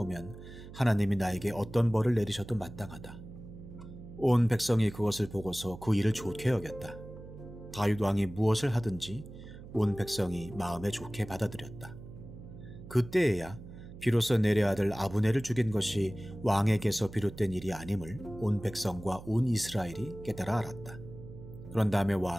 하나님이 나에게 어떤 벌을 내리셔도 마땅하다. 온 백성이 그것을 보고서 그 일을 좋게 여겼다. 다윗 왕이 무엇을 하든지 온 백성이 마음에 좋게 받아들였다. 그때에야 비로소 넬의 아들 아브넬을 죽인 것이 왕에게서 비롯된 일이 아님을 온 백성과 온 이스라엘이 깨달아 알았다. 그런 다음에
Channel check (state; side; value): noise; right; hum, 15 dB below the sound